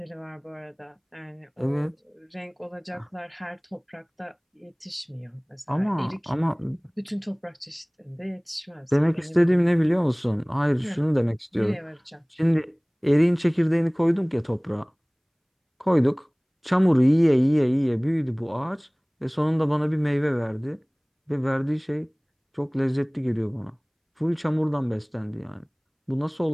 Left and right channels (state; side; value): identical; both; correlation 1.00